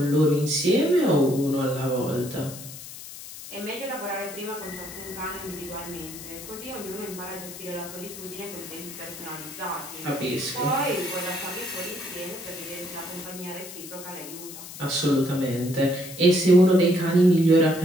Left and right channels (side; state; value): left; noise; hiss, 13 dB below the sound